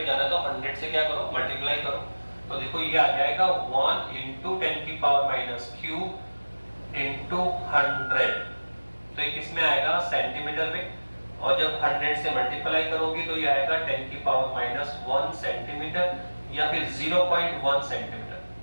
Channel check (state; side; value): inverted; both; correlation -1.00